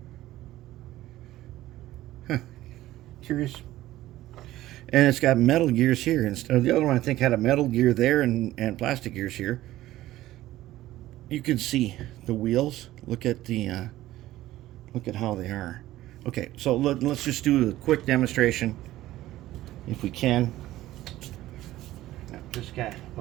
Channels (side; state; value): left; quieter; 15.4 dB